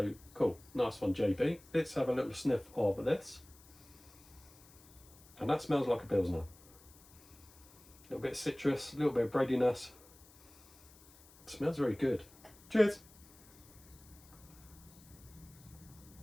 cool, nice one, JB. Let's have a little sniff of this, and that smells like a Pilsner. A little bit of citrus, a little bit of breadiness. It smells very good. Cheers.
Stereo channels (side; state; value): left; noise; hiss, 23 dB below the sound